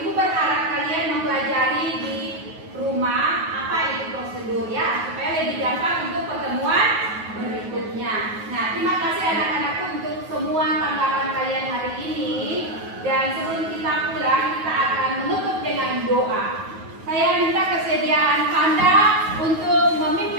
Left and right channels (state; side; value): late; left; 9.3 ms